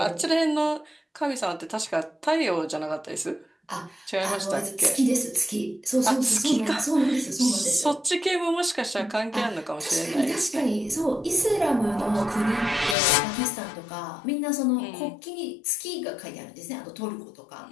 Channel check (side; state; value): right; drops out; at 13.0 s